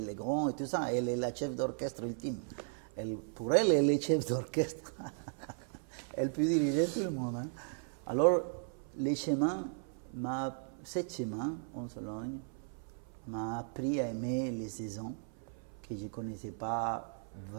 Legrand et tout ça. Elle est la chef d'orchestre ultime. Pour elle est chef d'orchestre. Elle peut diriger tout le monde. Hein. Alors, ce chemin en Sologne m'a appris à aimer les saisons que je ne connaissais pas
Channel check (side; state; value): left; silent; 54 dB below the other